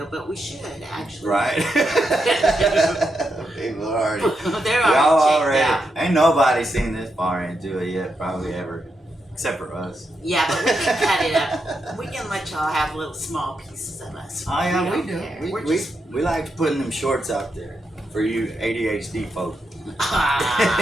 but we should actually. Right. People already. They're Y'all already checked out. Ain't nobody seen this far into it yet, probably ever, except for us. Yeah, but we can cut it up. We can let y'all have little small pieces of us. Oh yeah, we don't do. care. We, We're we, just we like putting them shorts out there for you ADHD folks.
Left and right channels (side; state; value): both; normal; correlation 0.84